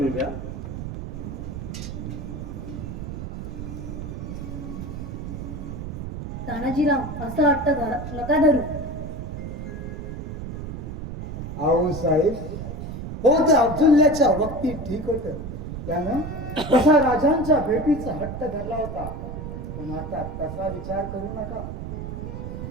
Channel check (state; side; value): noise; right; rumble, 7 dB below the sound